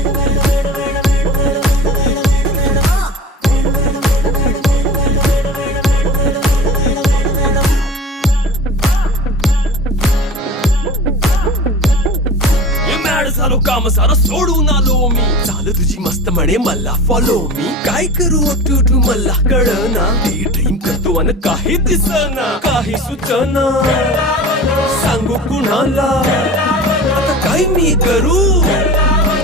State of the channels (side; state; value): both; normal; correlation 0.36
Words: झालो काम सारा सोडून आलो मी चाल तुझी मस्त म्हणे मला फॉलो मी काय करू अटू मला कळना ते ड्रीम करतो अन काही दिसना काही सुचना सांगू कुणाला आता काय मी करू